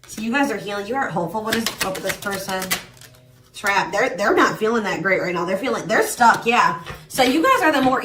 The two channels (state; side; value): identical; both; correlation 1.00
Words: So you guys are healing. You are hopeful. What is up with this person? Trap. They're not feeling that great right now. They're stuck. Yeah. So you guys are the more